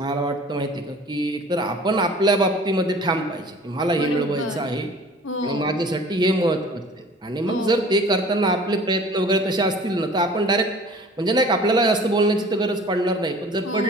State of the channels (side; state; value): both; normal; correlation 0.47